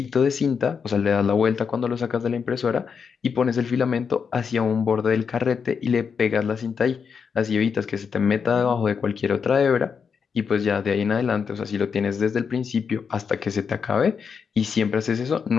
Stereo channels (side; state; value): right; quieter; 6.2 dB